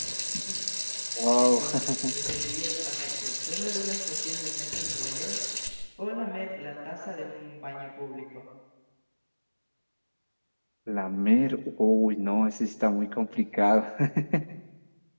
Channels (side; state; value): both; inverted; correlation -1.00